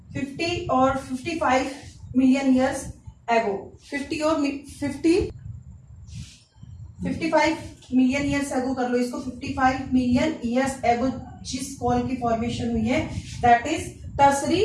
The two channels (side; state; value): both; identical; correlation 1.00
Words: 50 और 55 million years ago, 55 million years ago कर लो इसको, 55 मिलियन ईयर्स एगो जिस कोल की फॉर्मेशन हुई है, that is tertiary